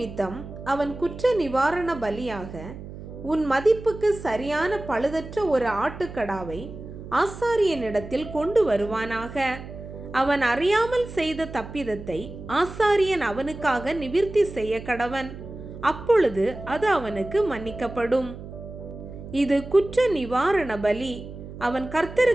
அவன் குற்ற நிவாரண பலியாக உன் மதிப்புக்கு சரியான பழுதற்ற ஒரு ஆட்டுக்கடாவை ஆசாரியனிடத்தில் கொண்டு வருவானாக. அவன் அறியாமல் செய்த தப்பிதத்தை ஆசாரியன் அவனுக்காக நிவிர்த்தி செய்ய கடவன். அப்பொழுது அது அவனுக்கு மன்னிக்கப்படும். இது குற்ற நிவாரண பலி. அவன்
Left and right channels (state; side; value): noise; right; hum, 12 dB below the sound